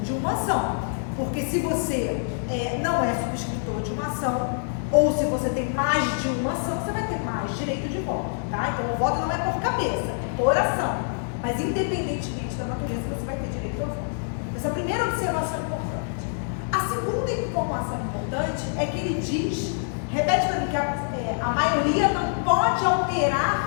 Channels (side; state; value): right; silent; 61 dB below the other